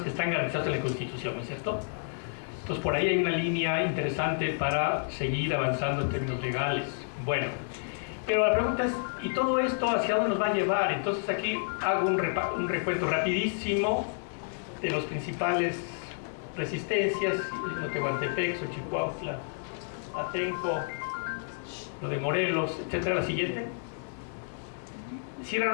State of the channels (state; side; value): silent; right; digital silence